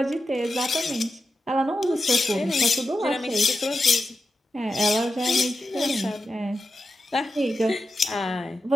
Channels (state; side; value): normal; both; correlation 0.90